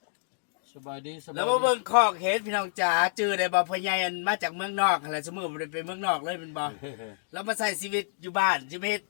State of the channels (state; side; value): silent; right; digital silence